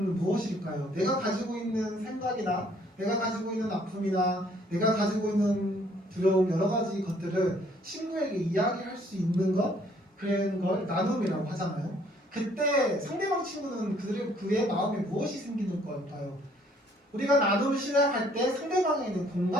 무엇일까요? 내가 가지고 있는 생각이나 내가 가지고 있는 아픔이나 내가 가지고 있는 두려움 여러 가지 것들을 친구에게 이야기할 수 있는 것 그런 걸 나눔이라고 하잖아요. 그때 상대방 친구는 그의 마음에 무엇이 생기는 걸까요? 우리가 나눔을 시작할 때 상대방에는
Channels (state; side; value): normal; both; correlation 0.63